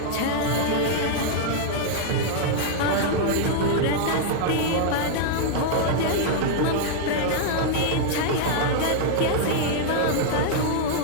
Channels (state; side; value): different; both; correlation -0.01